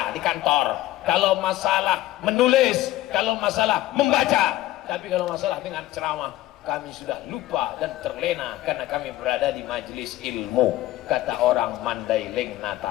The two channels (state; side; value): quieter; right; 15.3 dB